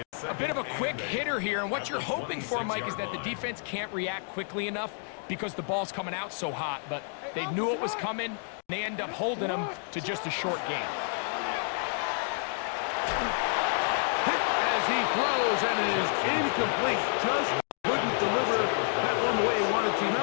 A bit of a quick hitter here, and what you're hoping for, Mike, is that the defense can't react quickly enough because the ball's coming out so hot. But they knew it was coming, and they end up holding them to just a short game. Hit as he throws, and it is incomplete. Just couldn't deliver that one the way he wanted to.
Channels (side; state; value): right; silent; 56 dB below the other